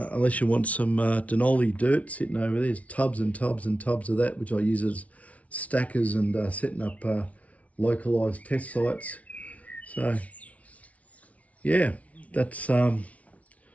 you want some Denali dirt sitting over there. There's tubs and tubs and tubs of that, which I use as stackers and setting up localized test sites. So yeah, that's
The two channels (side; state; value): right; late; 0.066 ms